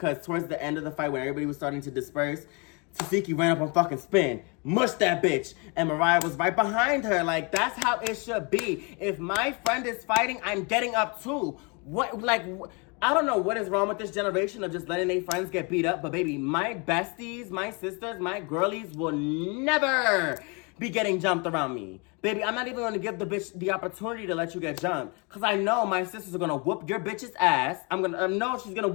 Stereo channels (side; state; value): right; quieter; 31.6 dB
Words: towards the end of the fight when everybody was starting to disperse, Tasiki ran up on fucking Spin, mushed that bitch, and Mariah was right behind her. Like, that's how it should be. If my friend is fighting, I'm getting up too. I don't know what is wrong with this generation of just letting their friends get beat up, but baby, my besties, my sisters, my girlies will never be getting jumped around me. Baby, I'm not even going to give the bitch the opportunity to let you get jumped, because I know my sisters are going to whoop your bitch's ass. I know she's going to